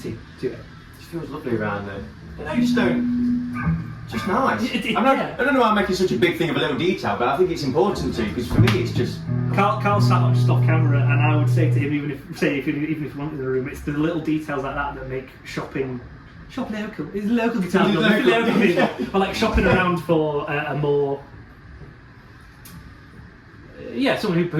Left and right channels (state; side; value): identical; both; correlation 1.00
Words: to it. It feels lovely around there. I just don't. Just nice. I don't know why I'm making such a big thing of a little detail, but I think it's important to, because for me it's just. Carl sat up just off camera, and I would say to him, even if you want in the room, it's the little details like that make shopping local. It's local guitar. Local people. But like shopping around for a more. Someone